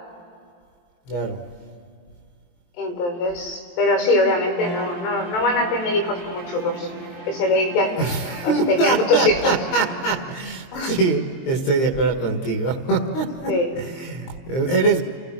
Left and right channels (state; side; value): late; right; 23 ms